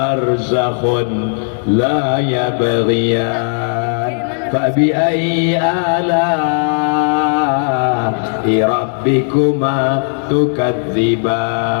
la yabghiyan fabi ayyi ala'i rabbikuma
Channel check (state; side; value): silent; right; 70 dB below the other